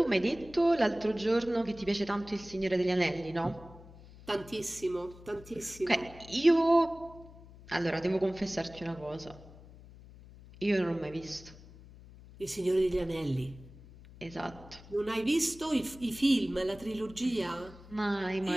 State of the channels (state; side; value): noise; left; hum, 20 dB below the sound